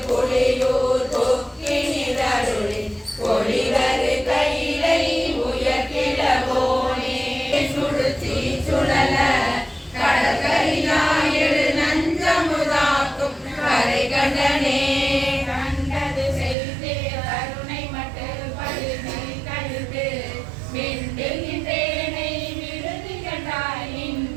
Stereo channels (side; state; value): left; drops out; at 16.6 s